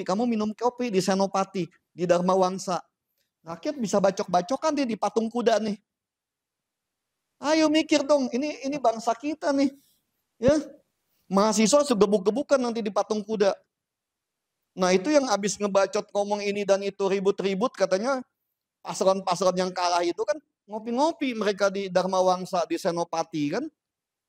kamu minum kopi di Senopati, di Dharma Wangsa. Rakyat bisa bacok-bacokan nih di patung kuda nih. Ayo mikir dong, ini bangsa kita nih. Ya, mahasiswa segebuk-gebukan nanti di patung kuda. Nah itu yang habis ngebacot ngomong ini dan itu ribut-ribut katanya paslon-paslon yang kalah itu kan ngopi-ngopi mereka di Dharma Wangsa, di Senopati kan.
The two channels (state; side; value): identical; both; correlation 1.00